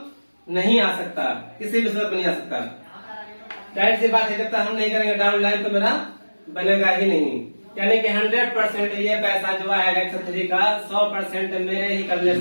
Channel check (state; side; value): inverted; both; correlation -1.00